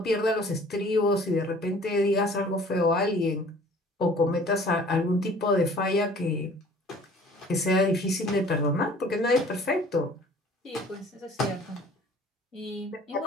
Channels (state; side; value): normal; both; correlation 0.50